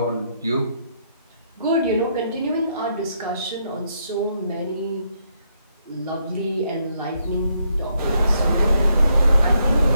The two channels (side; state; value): both; inverted; correlation -0.76